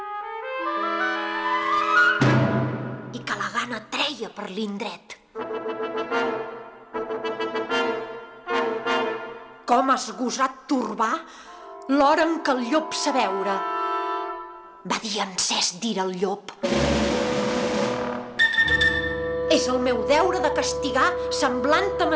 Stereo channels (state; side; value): identical; both; correlation 1.00